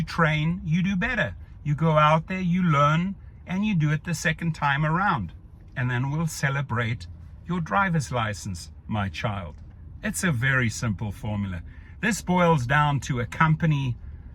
train, you do better. You go out there, you learn, and you do it the second time around. And then we'll celebrate your driver's license, my child. It's a very simple formula. This boils down to a company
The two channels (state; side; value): identical; both; correlation 1.00